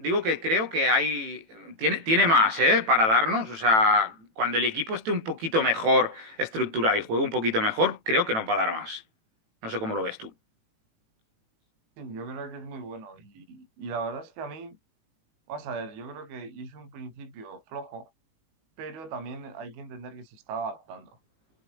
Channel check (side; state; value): left; late; 18 ms